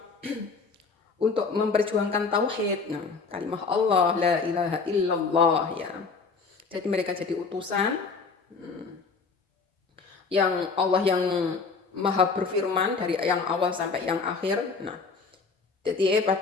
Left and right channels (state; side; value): quieter; right; 4.7 dB